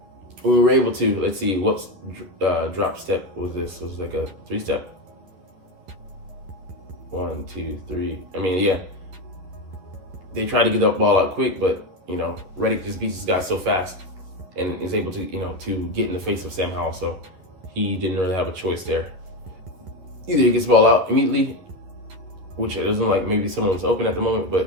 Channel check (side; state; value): left; late; 11 ms